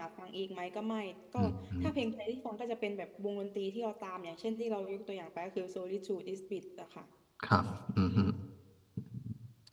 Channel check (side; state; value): both; identical; correlation 1.00